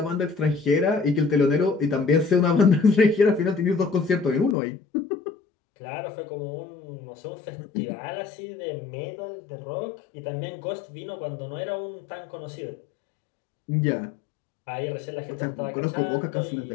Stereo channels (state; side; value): drops out; right; at 4.5 s